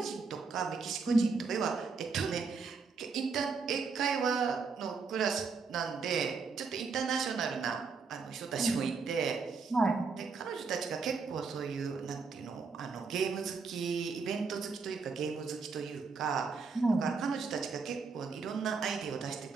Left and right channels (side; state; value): left; quieter; 4.9 dB